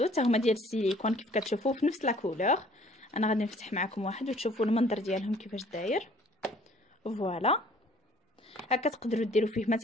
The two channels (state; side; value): normal; both; correlation 0.56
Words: حتى هما ديال السيليكون كيف كتشوفوا في نفس لا كولور. انا غادي نفتح معكم واحد وتشوفوا المنظر ديالهم كيفاش داير. فوالا هكا تقدروا ديروا فيه